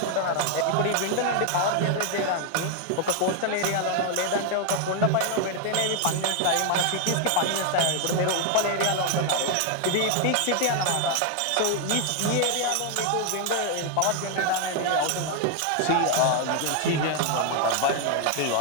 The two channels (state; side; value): different; both; correlation 0.01